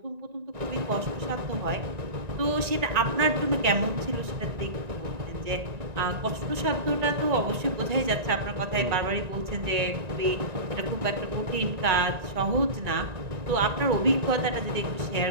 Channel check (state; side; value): late; left; 1.9 ms